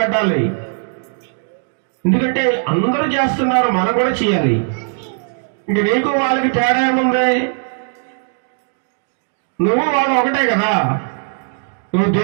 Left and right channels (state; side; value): silent; left; 60 dB below the other